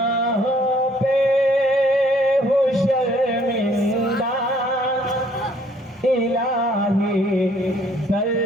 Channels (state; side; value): normal; both; correlation 0.61